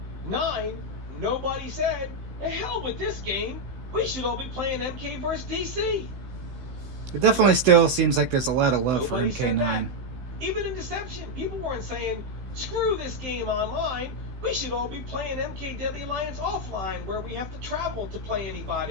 Nobody said, "The hell with this game. We should all be playing MK versus DC." It definitely still seems like there's a lot of love Nobody for MK9. Even in Deception, people weren't saying, "Screw this game online. We should all be playing MK Deadly Alliance offline, where we have to travel to play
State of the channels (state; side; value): late; left; 16 ms